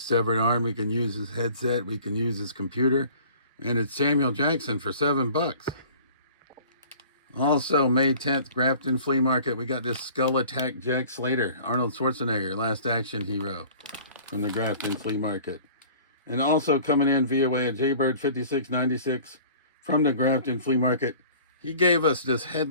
severed arm, we can use his headset, we can use his computer. And it's Samuel Jackson for $7. Also, May 10th, Grafton Flea Market. We got this Skull Attack Jack Slater, Arnold Schwarzenegger, Last Action Hero from the Grafton Flea Market. And also coming in via way of Jaybird 5696 from the Grafton Flea Market. He gave us this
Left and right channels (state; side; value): inverted; both; correlation -0.47